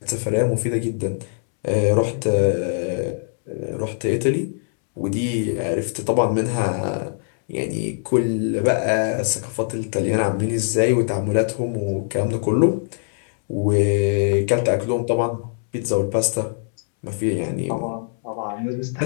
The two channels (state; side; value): silent; right; 64 dB below the other